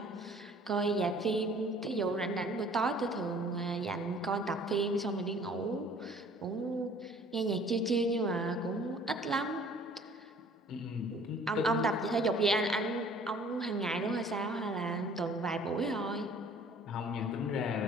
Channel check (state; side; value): normal; both; correlation 0.52